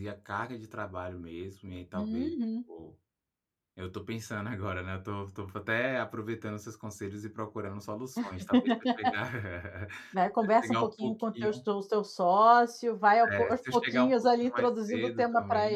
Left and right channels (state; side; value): identical; both; correlation 1.00